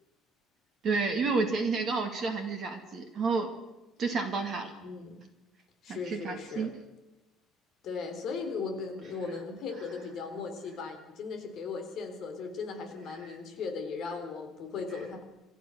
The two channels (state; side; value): normal; both; correlation 0.61